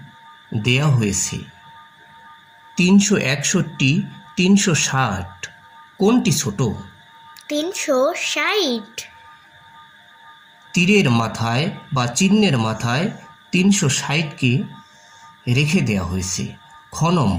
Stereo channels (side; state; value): both; identical; correlation 1.00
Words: দেয়া হয়েছে 361, 360। কোনটি ছোট? 360। তীরের মাথায় বা চিহ্নের মাথায় 360কে রেখে দেওয়া হয়েছে। খ